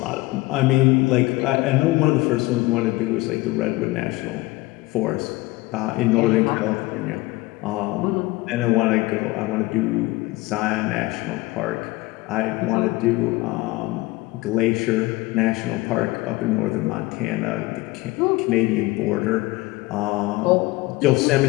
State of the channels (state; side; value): quieter; right; 20.8 dB